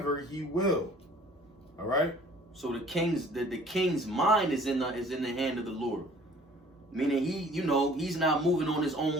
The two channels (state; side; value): normal; both; correlation 0.52